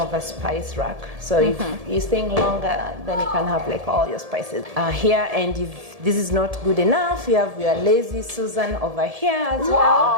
of a spice rack. So if you're staying longer, then you can have like all your spices here. And if this is not good enough, you have your lazy Susan over here as well.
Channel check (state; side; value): late; left; 1.7 ms